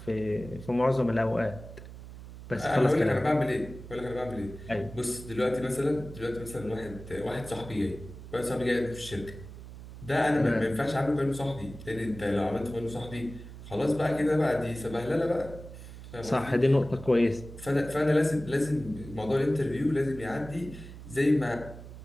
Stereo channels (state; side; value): noise; right; hum, 14 dB below the sound